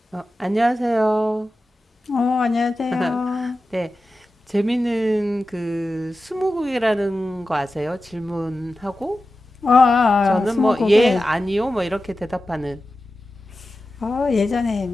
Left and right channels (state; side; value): normal; both; correlation 0.93